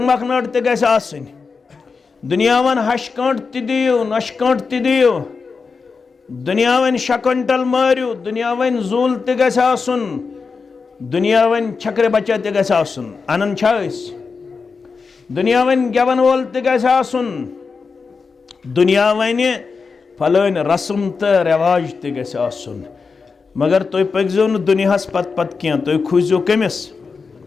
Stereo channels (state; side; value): quieter; right; 4.9 dB